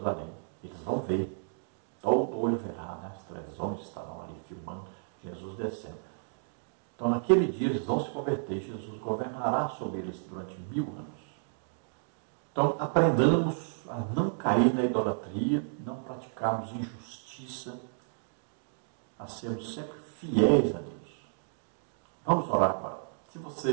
Eles vão ver, todo olho verá, né? As televisões estarão ali filmando Jesus descendo. Então, naquele dia, eles vão se converter. Jesus governará sobre eles durante 1000 anos. Então, aprendamos a não cair na idolatria, não praticarmos injustiça, a sermos sempre fiéis a Deus. Vamos orar agora. Se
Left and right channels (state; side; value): silent; left; digital silence